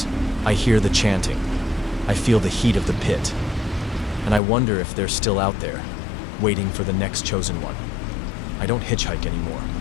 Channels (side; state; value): right; drops out; at 4.4 s